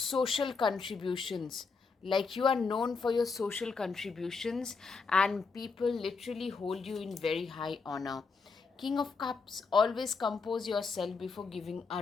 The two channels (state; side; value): quieter; right; 4.7 dB